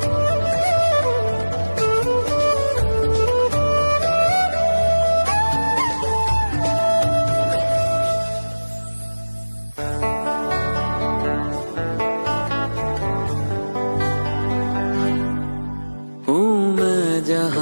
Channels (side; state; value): both; inverted; correlation -1.00